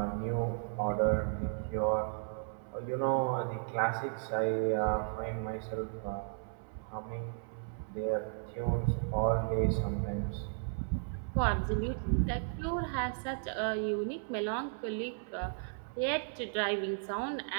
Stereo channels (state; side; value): silent; left; 55 dB below the other